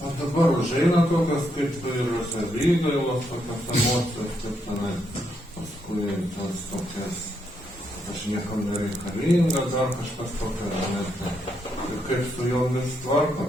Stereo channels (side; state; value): both; normal; correlation 0.78